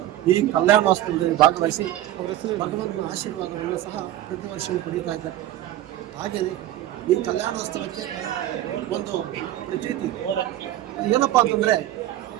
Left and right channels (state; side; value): quieter; left; 13.5 dB